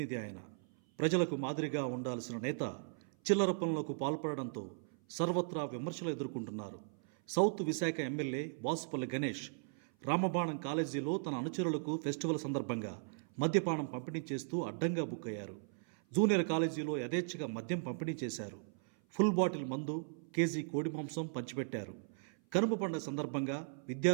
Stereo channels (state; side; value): silent; left; 53 dB below the other